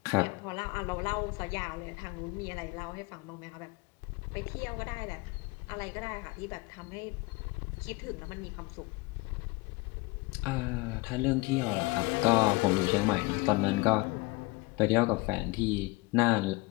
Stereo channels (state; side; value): quieter; right; 23.6 dB